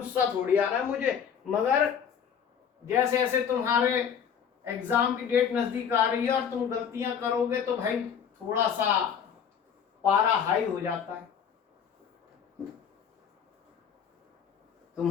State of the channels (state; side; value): quieter; right; 7.7 dB